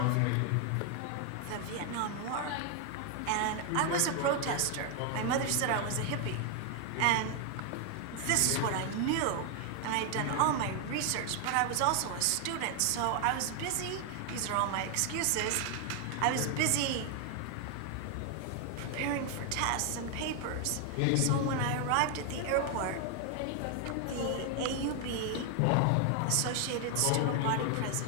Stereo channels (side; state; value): both; different; correlation 0.00